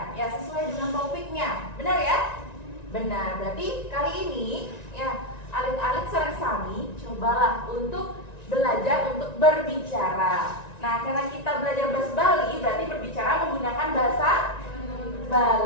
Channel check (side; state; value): right; late; 1.9 ms